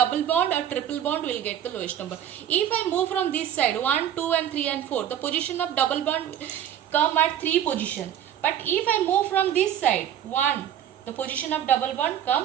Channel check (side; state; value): left; quieter; 10.4 dB